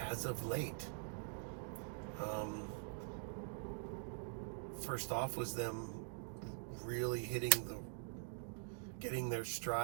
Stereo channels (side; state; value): left; silent; digital silence